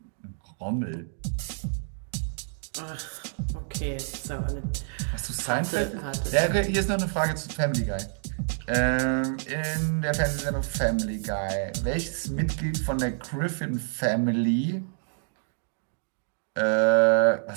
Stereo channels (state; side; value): silent; left; digital silence